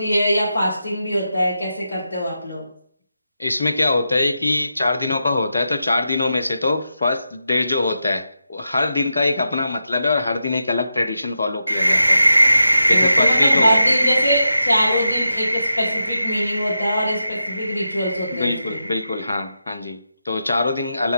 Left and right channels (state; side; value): inverted; both; correlation -0.87